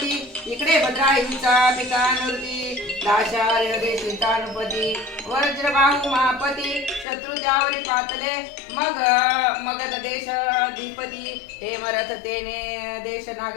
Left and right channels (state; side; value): drops out; right; at 7.1 s